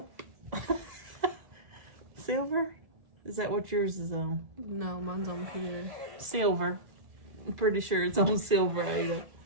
Silver? Is that what yours is on? No, mine's on Peter. Silver. I'm pretty sure it's on silver, Ada.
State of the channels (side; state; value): left; late; 1.7 ms